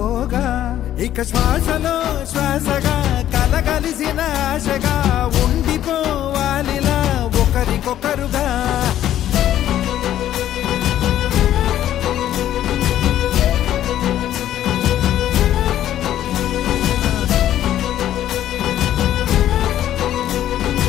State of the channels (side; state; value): right; quieter; 12.0 dB